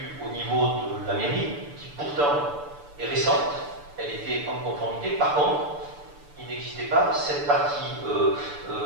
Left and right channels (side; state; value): left; late; 6.9 ms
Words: au niveau de la mairie, qui pourtant est récente, elle était en conformité. Par contre, il n'existait pas cette partie-là